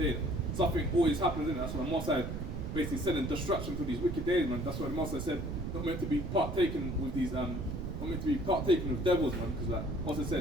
something always happens in it. That's why the Most High basically sending destruction to these wicked days, man. That's why the Most High said not meant to be partaken with these not meant to be partaken with devils, man. Because like Most High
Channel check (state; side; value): noise; right; rumble, 5 dB below the sound